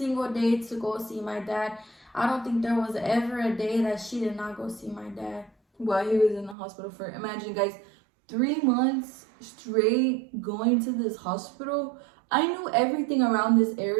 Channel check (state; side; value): drops out; left; at 6.6 s